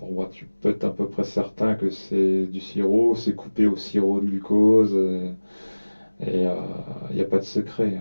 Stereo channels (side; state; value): both; inverted; correlation -1.00